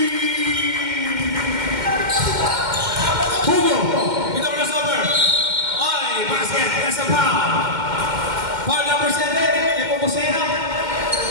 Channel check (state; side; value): late; left; 2.1 ms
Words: Hugo, ito crossover. Oy, basket, nasa foul. Foul number 7, Nepomuceno.